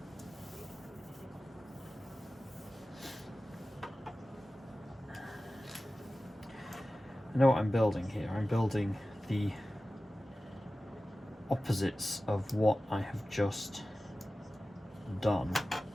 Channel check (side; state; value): both; normal; correlation 0.95